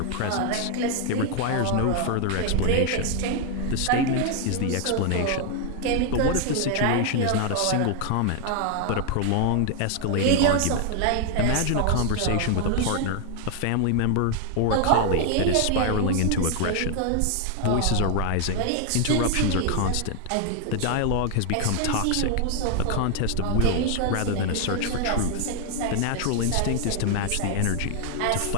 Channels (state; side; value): different; both; correlation 0.00